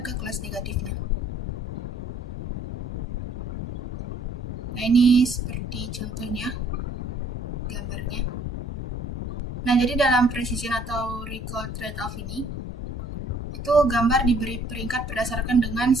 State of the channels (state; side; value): normal; both; correlation 0.61